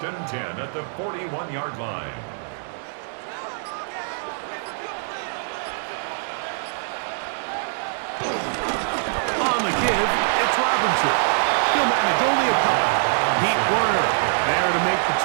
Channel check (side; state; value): left; silent; digital silence